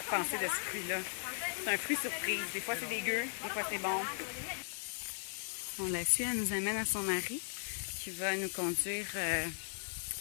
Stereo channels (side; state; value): right; silent; digital silence